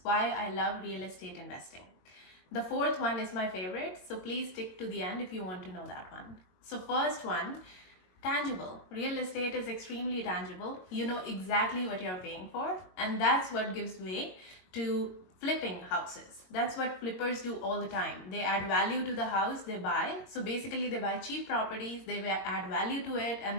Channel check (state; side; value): late; right; 22 ms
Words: why I love real estate investing. The fourth one is my favorite, so please stick to the end if you want to know that one. So first one, tangible. Real estate is extremely tangible. You know exactly what you're paying for, and that's what gives way to flipping houses. That's what flippers do all the time. They add value to the house they buy. So basically they buy cheap properties, they add value to it,